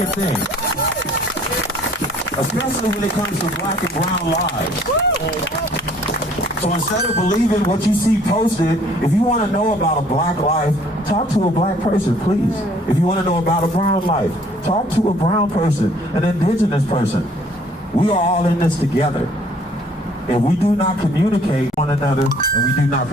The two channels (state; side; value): normal; both; correlation 0.58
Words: thing. Especially when it comes to black and brown lives. So instead of believing what you see posted, if you want to know about a black life, talk to a black person, please. If you want to know about a brown life, talk to a brown person, an indigenous person. We are all in this together. If we do not communicate one another and we do not